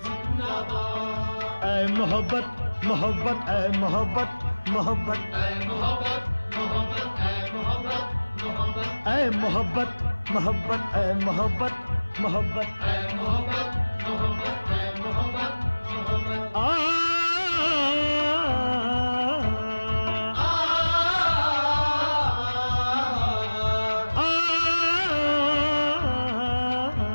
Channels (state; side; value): inverted; both; correlation -1.00